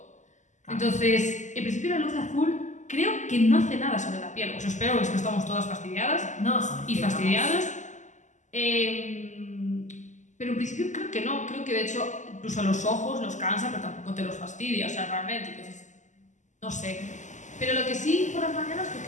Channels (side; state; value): right; late; 0.35 ms